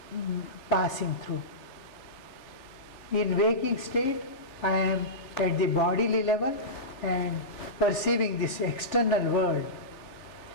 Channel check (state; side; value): late; right; 3.4 ms